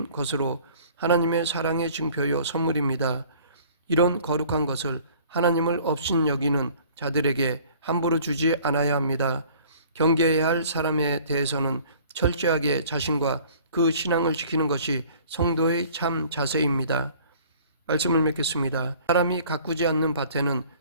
것으로 하나님의 사랑의 증표요 선물입니다. 이런 거룩한 것을 하나님을 업신여기는 자들에게 함부로 주지 않아야 합니다. 경계해야 할 사람에 대해서는 철저하게 자신과 그 신앙을 지키는 것이 성도의 참 자세입니다. 말씀을 맺겠습니다. 사람이 가꾸지 않는 밭에는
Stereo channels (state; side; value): inverted; both; correlation -0.52